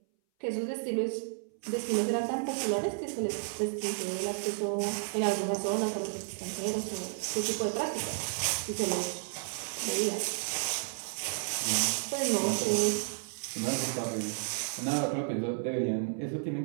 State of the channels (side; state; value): left; silent; 56 dB below the other